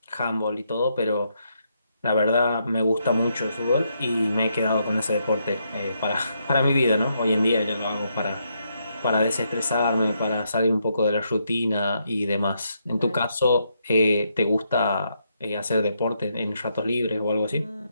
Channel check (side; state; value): both; inverted; correlation -0.78